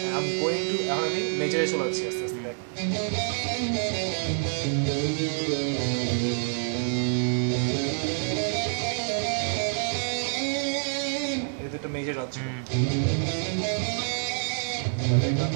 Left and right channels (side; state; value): left; silent; digital silence